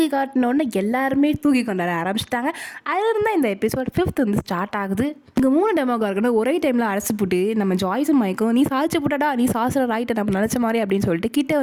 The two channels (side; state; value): both; identical; correlation 1.00